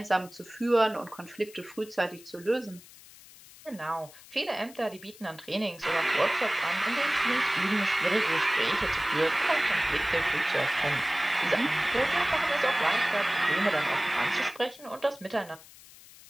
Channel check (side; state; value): left; noise; hiss, 21 dB below the sound